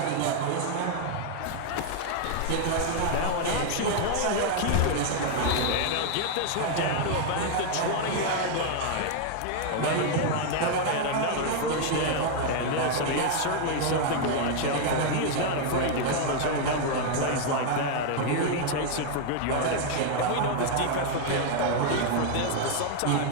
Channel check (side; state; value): both; different; correlation 0.00